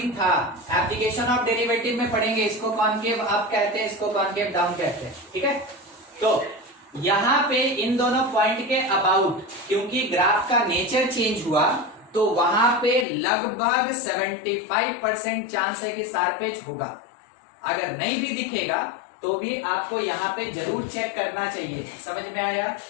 था। एप्लीकेशन ऑफ डेरिवेटिव में पढ़ेंगे, इसको कॉनकेव अप कहते हैं, इसको कॉनकेव डाउन कहते हैं। ठीक है, तो यहां पे इन दोनों पॉइंट के अबाउट, क्योंकि ग्राफ का नेचर चेंज हुआ, तो वहां पे लगभग 75% चांस है कि शार्पेज होगा। अगर नहीं भी दिखेगा तो भी आपको यहाँ पे जरूर चेक करना चाहिए। समझ में आया?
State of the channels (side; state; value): right; drops out; at 13.1 s